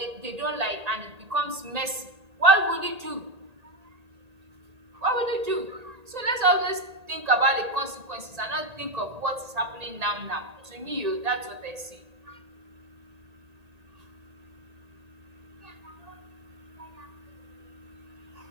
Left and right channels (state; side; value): late; left; 1.8 ms